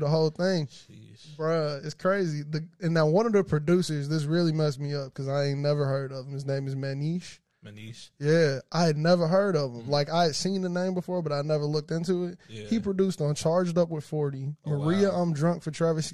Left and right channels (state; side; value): identical; both; correlation 1.00